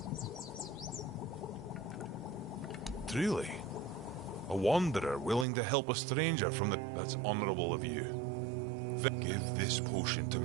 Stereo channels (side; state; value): left; drops out; at 5.5 s